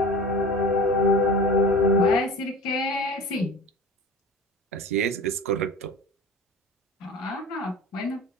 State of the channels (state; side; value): normal; both; correlation 0.36